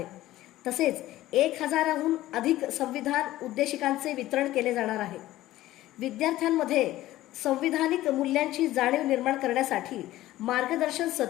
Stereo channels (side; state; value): right; quieter; 15.5 dB